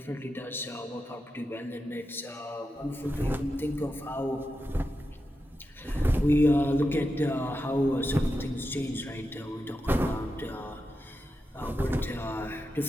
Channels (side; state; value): both; normal; correlation 0.89